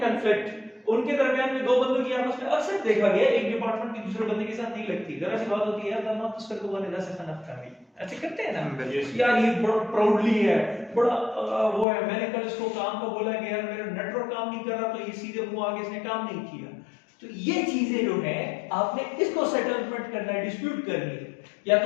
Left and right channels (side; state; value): right; drops out; at 11.9 s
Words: कंफ्लिक्ट, उनके दरमियान में दो बंदों की आपस में अक्सर देखा गया एक डिपार्टमेंट की दूसरे बंदे के साथ नहीं लगती, जरा सी बात होती है यार आप उसका को बने से खाना खा ऐसे करते हैं ना यार, ये बड़ा प्राउडली है, बड़ा वो है, मैंने कल इसको काम का बोला कि यार मेरा नेटवर्क काम नहीं कर रहा तो ये सीधे मुंह आगे इसने काम नहीं किया। तो ये चीजें जो है आपने इसको सेटलमेंट करना है, डिस्प्यूट करनी है, या